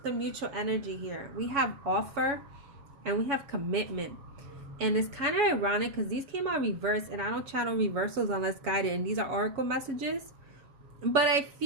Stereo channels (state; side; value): late; left; 7.1 ms